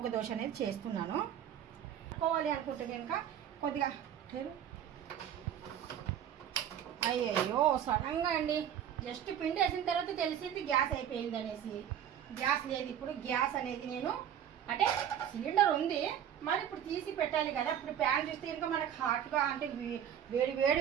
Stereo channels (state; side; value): quieter; left; 9.7 dB